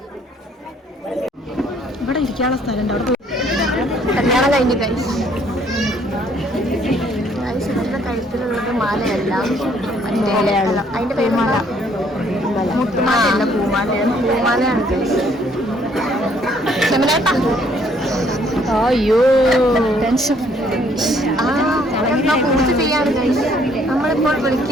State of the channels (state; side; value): normal; both; correlation 0.64